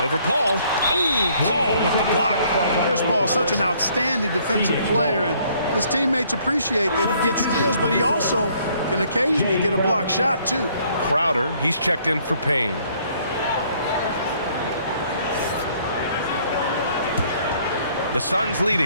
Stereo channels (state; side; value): inverted; both; correlation -0.63